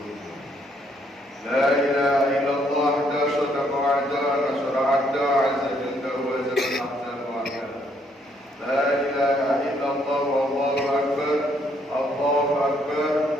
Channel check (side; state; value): both; normal; correlation 0.70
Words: La ilaha illallah da sadaqa wa'da nasra 'abda 'azza jalla wa zalla ahsan wa'da. La ilaha illallah wallahu akbar, Allahu akbar,